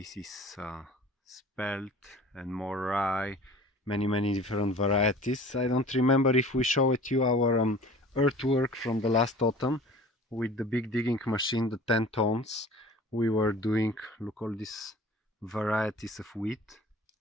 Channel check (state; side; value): normal; both; correlation 0.44